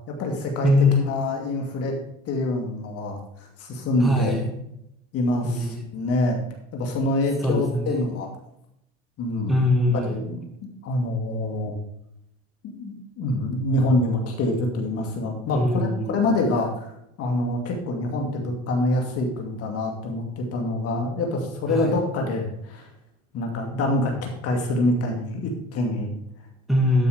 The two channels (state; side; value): normal; both; correlation 0.46